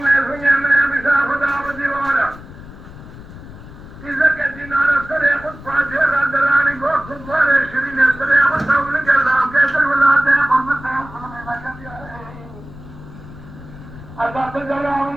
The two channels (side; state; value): left; noise; rumble, 16 dB below the sound